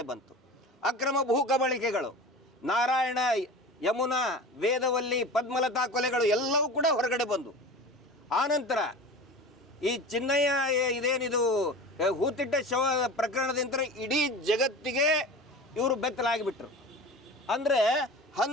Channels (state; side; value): normal; both; correlation 0.34